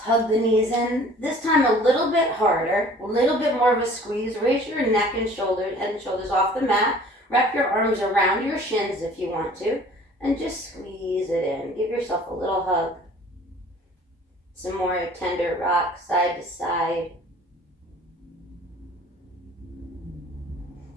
the knees in. This time a little bit harder, a little bit more of a squeeze. Raise your neck and shoulders off the mat. Wrap your arms around your shins if you want to, and just squeeze it in. Give yourself a little hug. Some more tender rock side to side.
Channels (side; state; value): both; normal; correlation 0.50